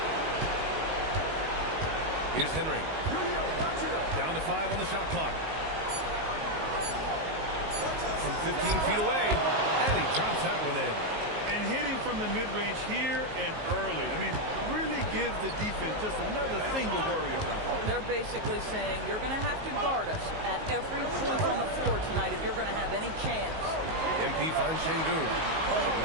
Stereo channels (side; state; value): left; late; 19 ms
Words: Here's Henry. Down to 5 on the shot clock. From 15 feet away, and he drops that one in. And hitting from the mid-range here and early. I mean, really gives the defense just another thing to worry about. They're basically saying you're going to have to guard us at every point on the floor tonight if you're going to have any chance. MP finds Şengün.